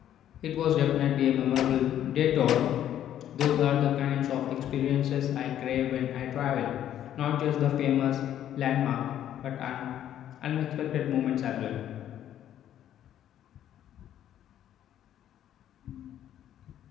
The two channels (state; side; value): quieter; right; 11.1 dB